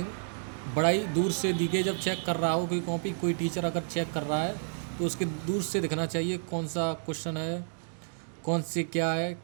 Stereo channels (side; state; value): left; silent; digital silence